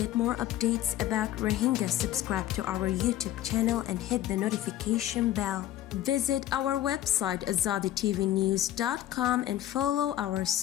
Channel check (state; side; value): quieter; right; 13.2 dB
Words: more updates about Rohingya, subscribe to our YouTube channel and hit the notification bell. Visit our website azaditvnews.com and follow our